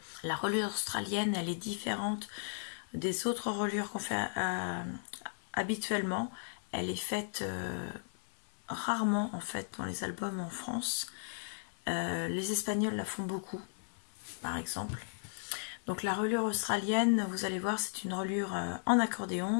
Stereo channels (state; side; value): silent; right; 54 dB below the other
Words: La reliure australienne, elle est différente des autres reliures qu'on fait habituellement. Elle est faite rarement en fait dans les albums en France. Les Espagnols la font beaucoup, par exemple. Donc la reliure australienne, vous allez voir, c'est une reliure en